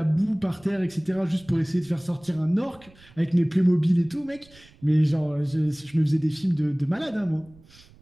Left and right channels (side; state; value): right; noise; rumble, 26 dB below the sound